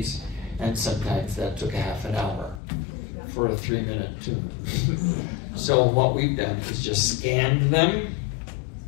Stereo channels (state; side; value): drops out; right; at 2.6 s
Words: And sometimes that took a half an hour for a 3-minute tune. So what we've done is just scanned them